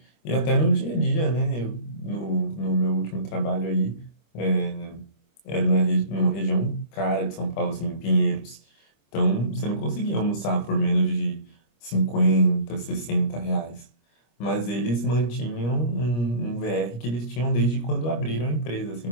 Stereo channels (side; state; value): right; late; 25 ms